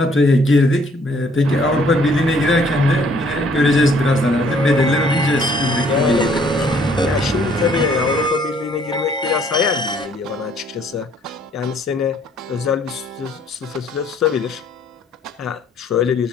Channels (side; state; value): both; normal; correlation 0.62